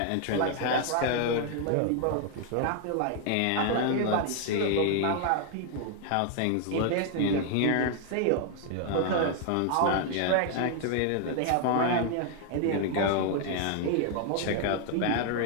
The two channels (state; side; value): different; both; correlation 0.00